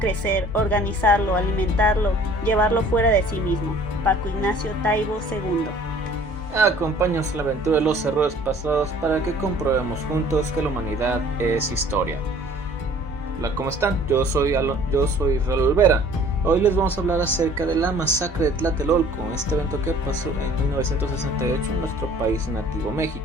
organizarlo, alimentarlo, llevarlo fuera de sí mismo. Paco Ignacio Taibo II. Acompáñanos a la aventura de los errores pasados para que comprobemos juntos que la humanidad es historia. Hola, ¿cómo están? Yo soy Raúl Olvera. Hoy les vamos a hablar acerca de la masacre de Tlatelolco, este evento que pasó en 1968 en nuestro país nativo,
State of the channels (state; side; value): normal; both; correlation 0.52